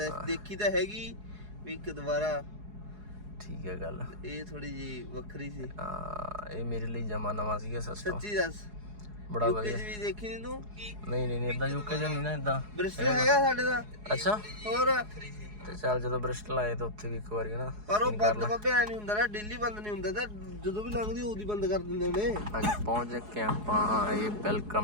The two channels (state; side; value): late; left; 4.8 ms